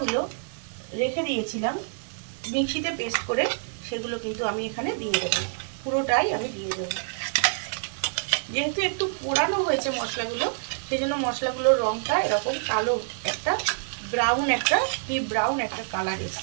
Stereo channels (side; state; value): left; silent; digital silence